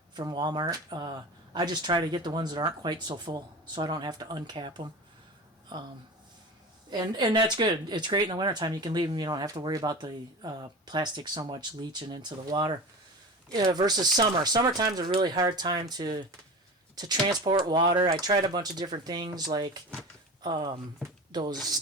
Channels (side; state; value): both; normal; correlation 0.31